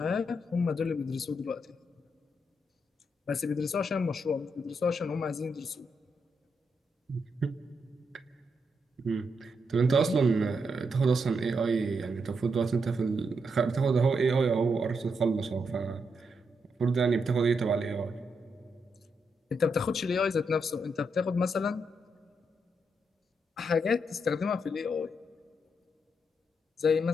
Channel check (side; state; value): both; normal; correlation 0.81